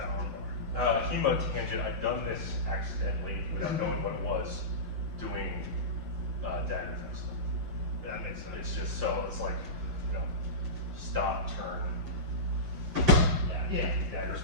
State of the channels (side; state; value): left; late; 7.4 ms